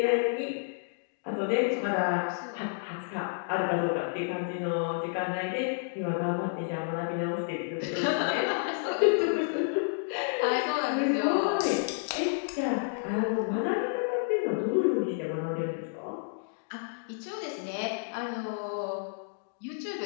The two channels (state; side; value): silent; right; digital silence